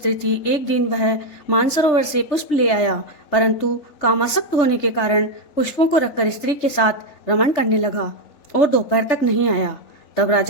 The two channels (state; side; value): late; right; 3.3 ms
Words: थी। एक दिन वह मानसरोवर से पुष्प ले आया, परंतु कामासक्त होने के कारण पुष्पों को रखकर स्त्री के साथ रमण करने लगा और दोपहर तक नहीं आया। तब